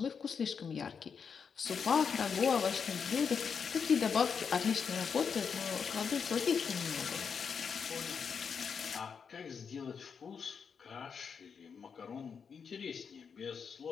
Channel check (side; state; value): right; quieter; 6.3 dB